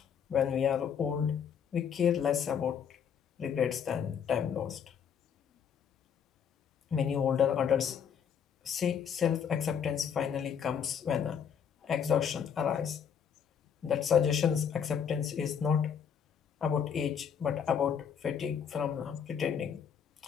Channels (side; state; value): right; quieter; 7.7 dB